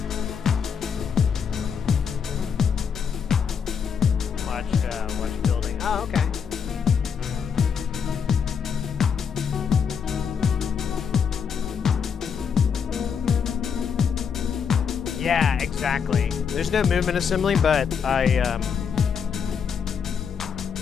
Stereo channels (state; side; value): quieter; right; 6.8 dB